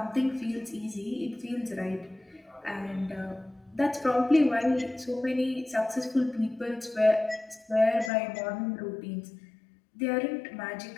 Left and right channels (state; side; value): drops out; right; at 8.1 s